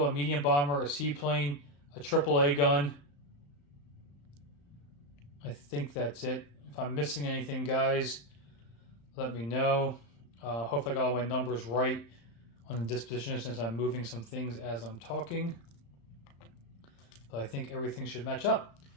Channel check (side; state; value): right; late; 35 ms